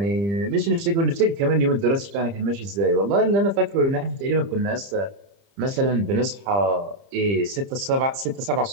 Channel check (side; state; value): left; late; 30 ms